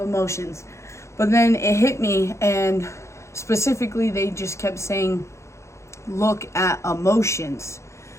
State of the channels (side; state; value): right; late; 0.14 ms